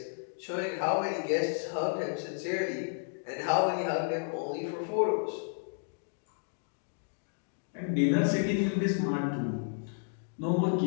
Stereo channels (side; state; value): right; silent; digital silence